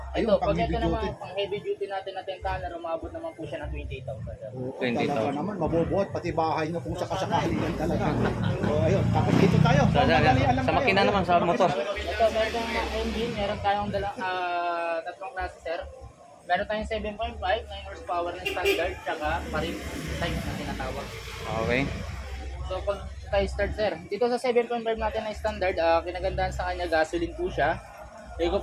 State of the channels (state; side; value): identical; both; correlation 1.00